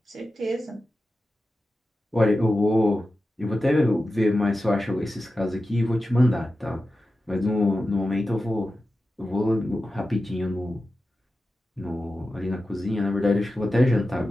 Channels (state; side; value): normal; both; correlation 0.93